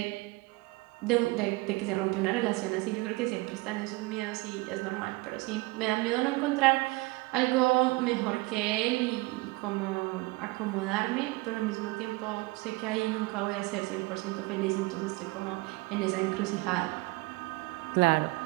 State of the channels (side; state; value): left; quieter; 23.4 dB